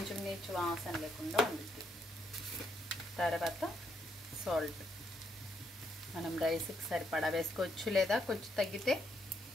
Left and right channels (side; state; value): both; normal; correlation 0.76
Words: నీచు వాసన లేకుండా ఉంటుంది. తర్వాత సాల్ట్ మనం రైస్కి సరిపడా వేసుకోవచ్చు, లేదా కొంచెం తగ్గితే